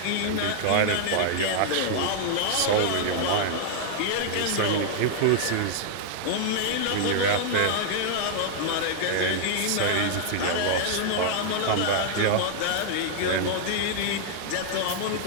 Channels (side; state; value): both; different; correlation -0.01